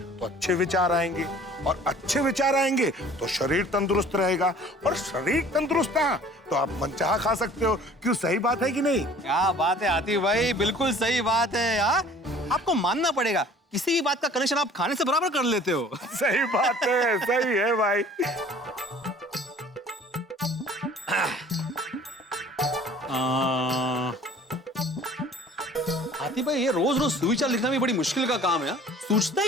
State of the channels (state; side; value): normal; both; correlation 0.50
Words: अच्छे विचार आएंगे, और अच्छे विचार आएंगे तो शरीर तंदुरुस्त रहेगा, और शरीर तंदुरुस्त है तो आप मनचाहा खा सकते हो। क्यों, सही बात है कि नहीं? क्या बात है आती भाई, बिल्कुल सही बात है यार। आपको मानना पड़ेगा, किसी भी बात का कनेक्शन आप खाने से बराबर कर लेते हो। सही बात है, सही है भाई। आती भाई, ये रोज रोज सुविचार लिखना भी बड़ी मुश्किल का काम है, सूझता